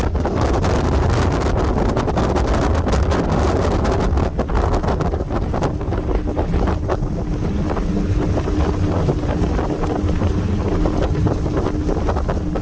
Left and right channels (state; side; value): identical; both; correlation 1.00